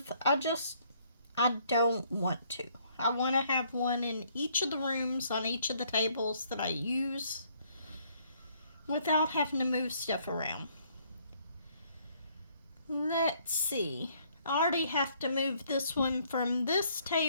I don't want to. I want to have one in each of the rooms on each of the tables that I use without having to move stuff around. Let's see. I already have to move this one from this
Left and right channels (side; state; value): both; inverted; correlation -0.66